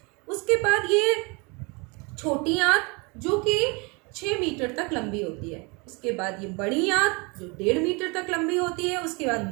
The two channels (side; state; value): left; quieter; 29.3 dB